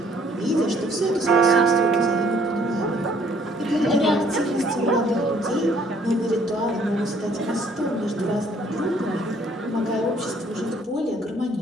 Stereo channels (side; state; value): both; normal; correlation 0.62